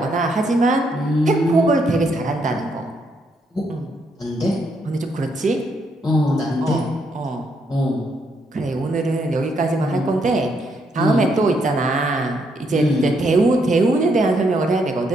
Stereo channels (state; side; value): normal; both; correlation 0.75